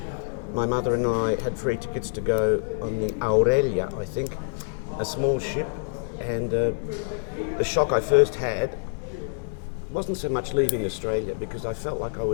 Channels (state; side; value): silent; right; 61 dB below the other